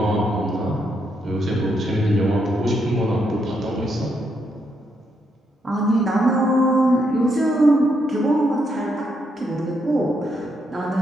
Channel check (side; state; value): both; normal; correlation 0.78